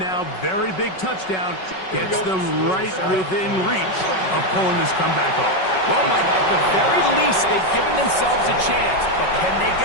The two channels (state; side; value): late; right; 5.3 ms